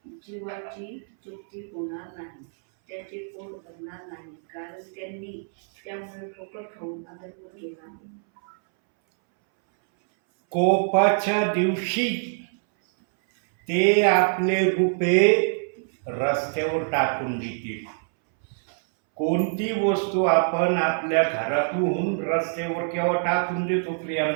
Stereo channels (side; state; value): left; silent; 62 dB below the other